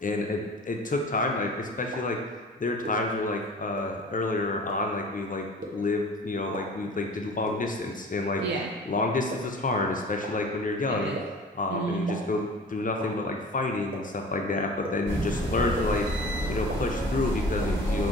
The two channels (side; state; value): both; normal; correlation 0.42